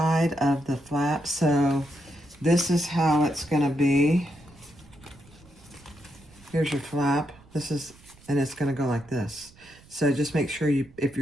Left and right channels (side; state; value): right; noise; rumble, 26 dB below the sound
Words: of the flap, so this is how it's going to be. Here's your flap. This is, and it's going to go like this. So just make sure you, if